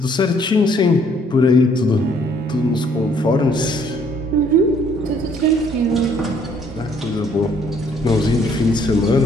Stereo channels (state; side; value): normal; both; correlation 0.63